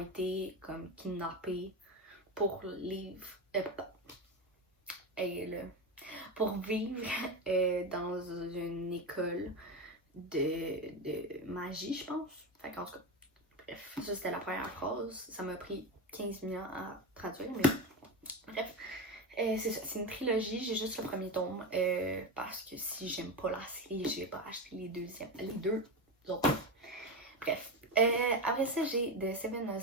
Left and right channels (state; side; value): normal; both; correlation 0.18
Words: comme kidnappées pour pour vivre dans une école de magie, je pense. Fait qu'en tout cas, bref, ça c'était la première phrase. Ça m'a pris 15 minutes à traduire, mais bref. C'est ça, c'est une trilogie, j'ai juste le premier tome parce que si j'aime pas la série, je vais pas acheter les deux autres. Bref. Après ça, j'ai The Seven